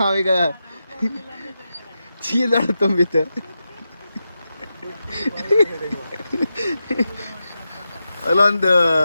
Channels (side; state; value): both; inverted; correlation -0.90